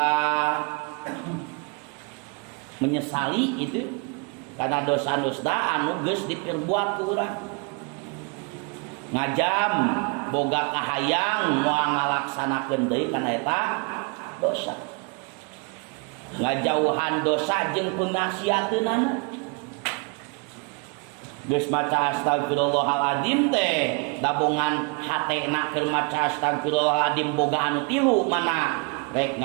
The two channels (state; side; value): quieter; left; 34.9 dB